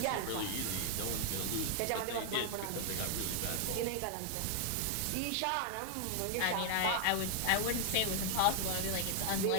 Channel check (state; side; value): different; both; correlation 0.00